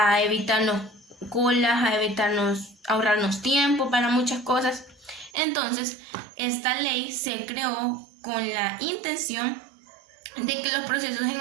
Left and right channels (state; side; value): drops out; left; at 5.3 s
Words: evitarnos colas, ahorrarnos tiempo para muchas cosas. Entonces, esta ley se creó con la intención de que los procesos en